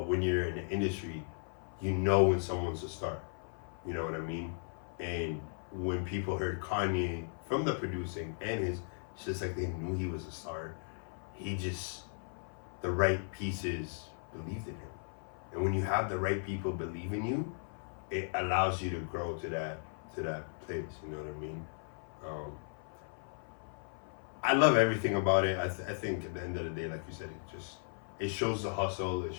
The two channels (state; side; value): silent; right; 54 dB below the other